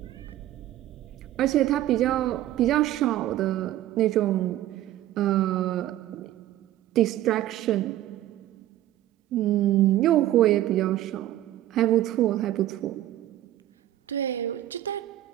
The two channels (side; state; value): left; quieter; 13.7 dB